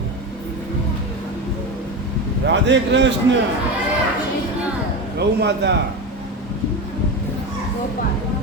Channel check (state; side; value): normal; both; correlation 0.21